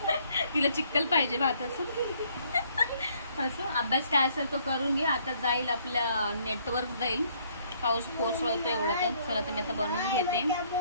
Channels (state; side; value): inverted; both; correlation -0.65